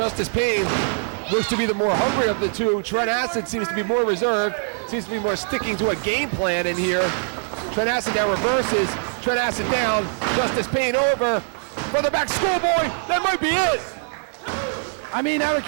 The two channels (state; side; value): silent; left; digital silence